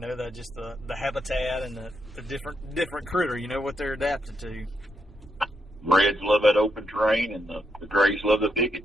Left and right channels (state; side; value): normal; both; correlation 0.81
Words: that just the habitat and the different critter, what they're adapted to. Reds love that open terrain, and the grays love the